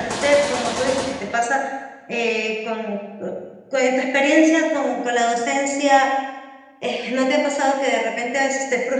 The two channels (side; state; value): both; identical; correlation 1.00